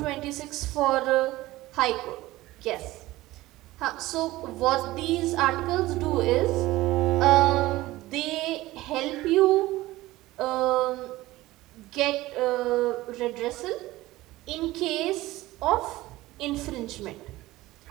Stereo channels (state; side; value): quieter; left; 17.8 dB